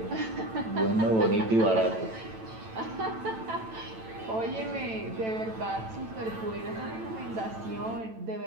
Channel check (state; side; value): late; left; 9.0 ms